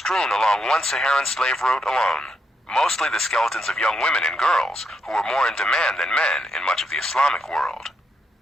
along one Saharan slave route alone, mostly the skeletons of young women and girls, who were more in demand than men in much of the Islamic world.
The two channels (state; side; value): normal; both; correlation 0.80